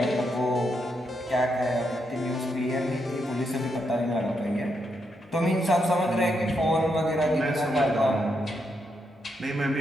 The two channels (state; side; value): normal; both; correlation 0.81